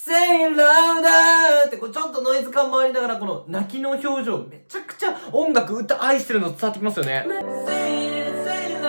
it louder ってこうちょっとノイズ感もありながらこの泣きの表情めちゃくちゃ音楽歌愛してるの伝わってきますよね。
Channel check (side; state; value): both; inverted; correlation -1.00